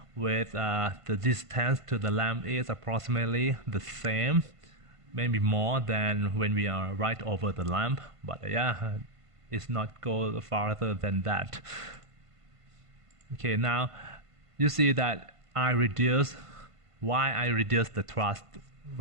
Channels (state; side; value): late; left; 1.5 ms